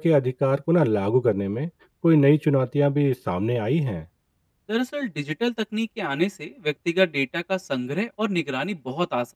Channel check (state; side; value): identical; both; correlation 1.00